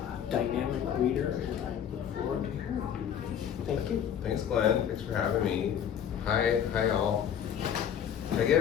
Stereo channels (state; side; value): quieter; right; 8.8 dB